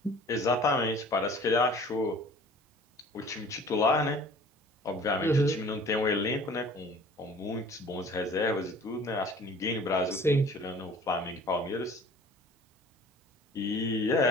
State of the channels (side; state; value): both; normal; correlation 0.48